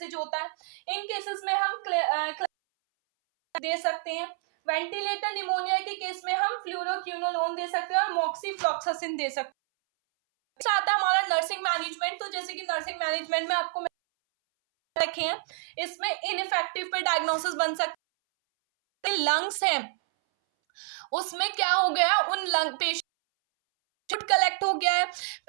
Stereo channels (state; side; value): silent; left; 59 dB below the other